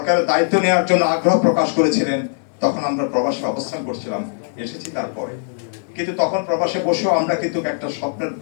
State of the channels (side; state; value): right; silent; digital silence